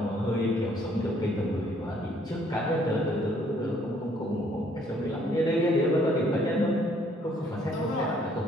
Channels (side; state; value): both; normal; correlation 0.64